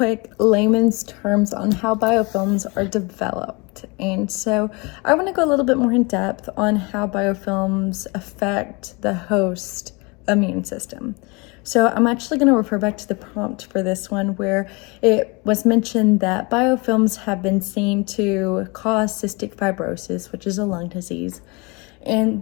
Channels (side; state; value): right; quieter; 28.2 dB